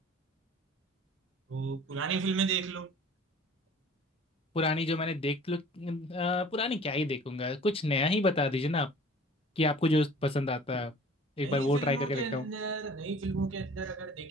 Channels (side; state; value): both; normal; correlation 0.47